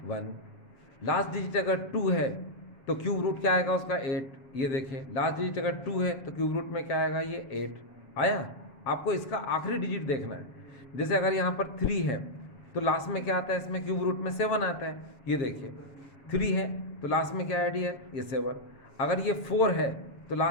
1। लास्ट डिजिट अगर 2 है तो क्यूब रूट क्या आएगा उसका, 8। ये देखिए, लास्ट डिजिट अगर 2 है तो क्यूब रूट में क्या आएगा, ये 8 आया। आपको इसका आखिरी डिजिट देखना है। जैसे अगर यहाँ पर 3 है तो लास्ट में क्या आता है, इसमें क्यूब रूट में 7 आता है। ये देखिए 3 है तो लास्ट में क्या है, ये 7। अगर ये 4 है तो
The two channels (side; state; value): right; late; 7.3 ms